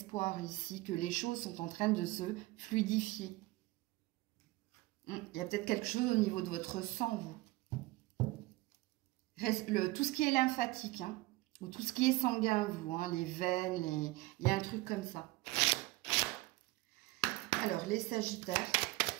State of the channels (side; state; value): left; quieter; 20.3 dB